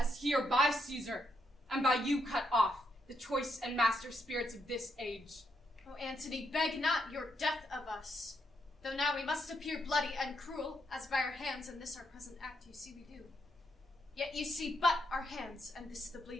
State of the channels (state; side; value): normal; both; correlation 0.79